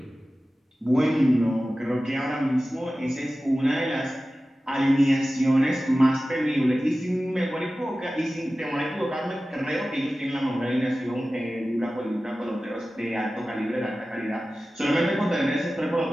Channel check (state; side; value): normal; both; correlation 0.95